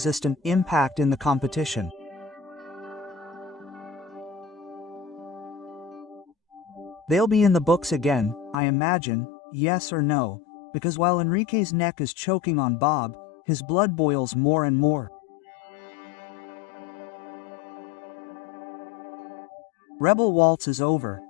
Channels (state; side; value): drops out; right; at 8.6 s